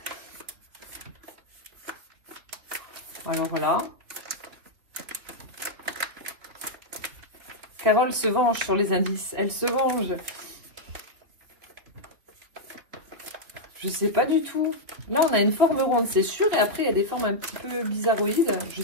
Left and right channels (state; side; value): late; left; 3.4 ms